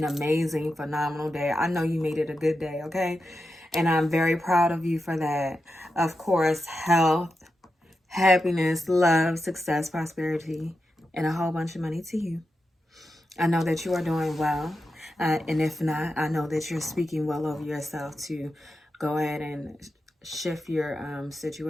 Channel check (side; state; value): both; normal; correlation 0.89